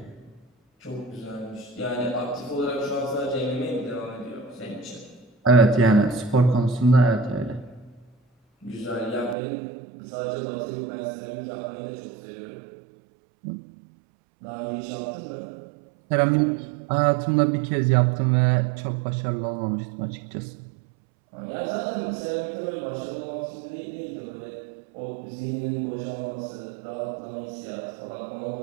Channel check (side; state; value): left; drops out; at 9.3 s